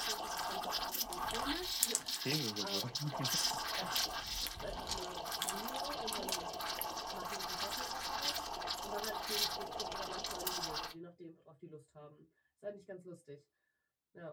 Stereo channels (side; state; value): both; identical; correlation 1.00